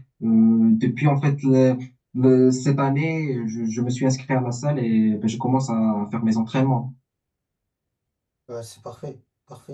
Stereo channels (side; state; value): both; identical; correlation 1.00